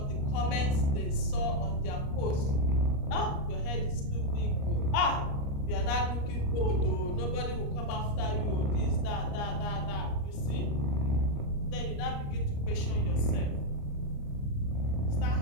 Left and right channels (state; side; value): late; right; 29 ms